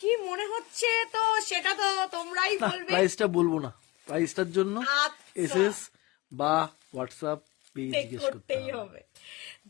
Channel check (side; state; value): right; quieter; 21.7 dB